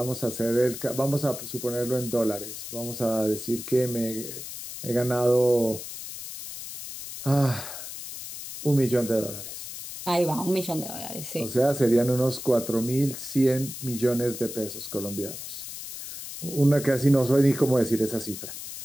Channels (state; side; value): noise; left; hiss, 10 dB below the sound